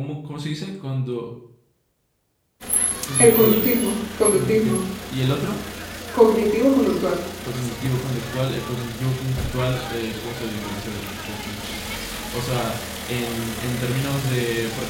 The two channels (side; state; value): both; identical; correlation 1.00